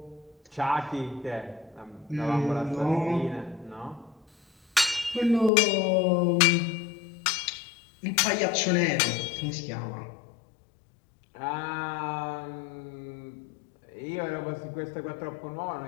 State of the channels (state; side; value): drops out; right; at 5.5 s